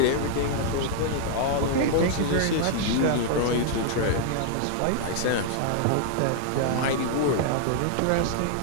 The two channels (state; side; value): different; both; correlation 0.00